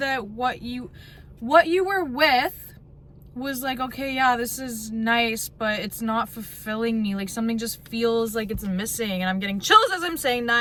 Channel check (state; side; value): identical; both; correlation 1.00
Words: what you were with was like, okay, yeah, this is nice, but it's not fulfilling me. Like, something just feels like it's missing, and I'm getting chills as I'm saying